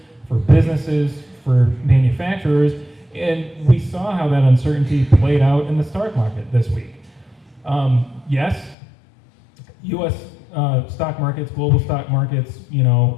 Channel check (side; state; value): right; drops out; at 8.8 s